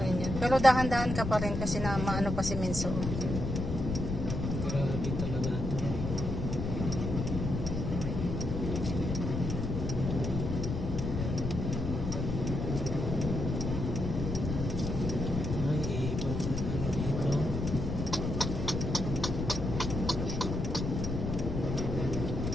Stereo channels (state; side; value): noise; left; rumble, 3 dB below the sound